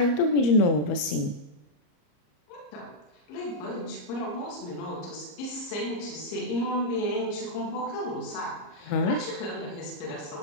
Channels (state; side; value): late; right; 34 ms